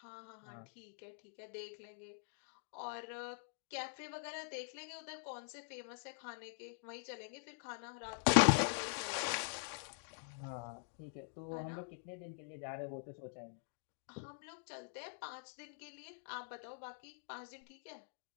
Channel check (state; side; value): silent; right; digital silence